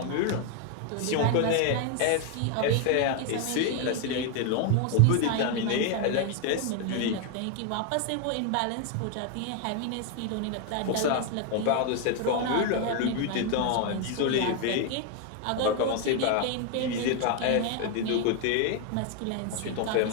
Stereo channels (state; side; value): different; both; correlation 0.01